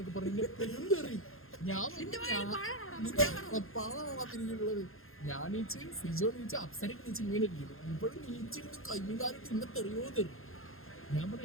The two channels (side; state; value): right; late; 0.61 ms